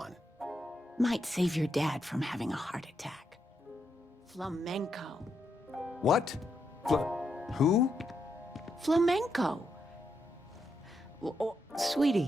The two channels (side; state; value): both; normal; correlation 0.81